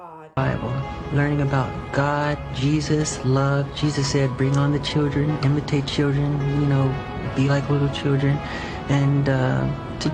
Bible, learning about God, Jesus, love. Jesus said, bring on the children, imitate children, be like little children, and to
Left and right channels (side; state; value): both; identical; correlation 1.00